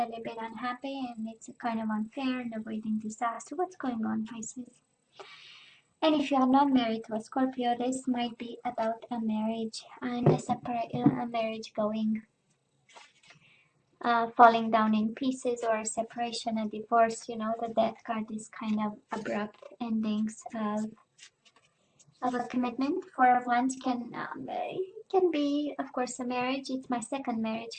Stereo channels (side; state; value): both; identical; correlation 1.00